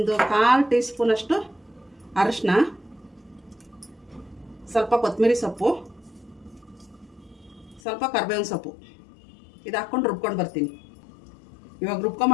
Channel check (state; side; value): drops out; right; at 7.8 s